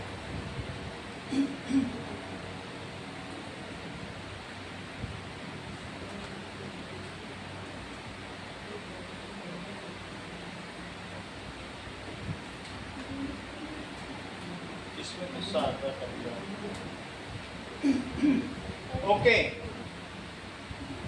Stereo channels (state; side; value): identical; both; correlation 1.00